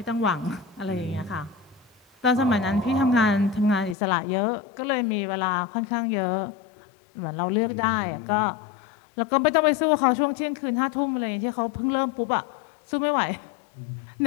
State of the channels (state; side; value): drops out; right; at 4.0 s